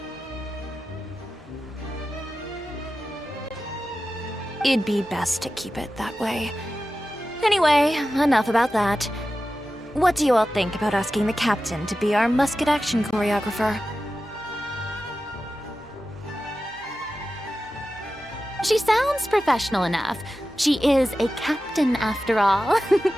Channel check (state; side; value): normal; both; correlation 0.93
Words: It'd be best to keep it that way. Anyway, enough about that. What do you all think about asking the captain to be our musket action choreographer? She sounds professional enough. She is a captain after all.